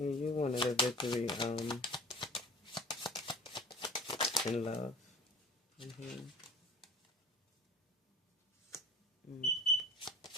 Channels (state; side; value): normal; both; correlation 0.41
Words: you wanted a victory in love. Mm-hmm.